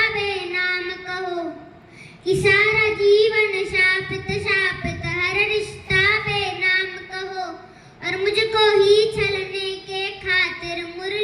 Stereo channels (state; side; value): identical; both; correlation 1.00